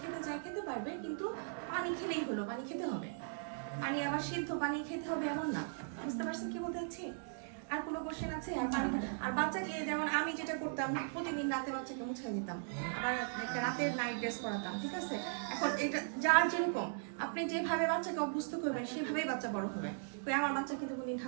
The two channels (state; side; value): silent; left; digital silence